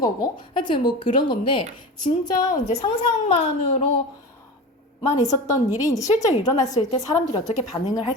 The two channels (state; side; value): normal; both; correlation 0.30